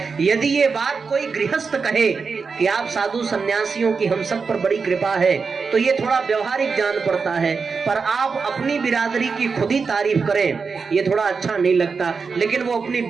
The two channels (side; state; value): left; quieter; 5.1 dB